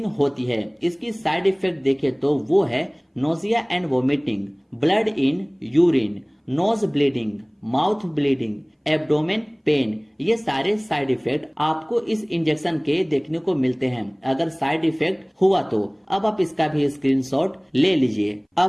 होती है। इसकी साइड इफेक्ट देखें तो वो है nausea and vomiting, blood in urine, nose bleeding, mouth bleeding, abdomen pain. ये सारे साइड इफेक्ट आपको इस इंजेक्शन के देखने को मिलते हैं। अगर साइड इफेक्ट हुआ तो अब आप इसका भी स्क्रीनशॉट ले लीजिए।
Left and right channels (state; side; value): identical; both; correlation 1.00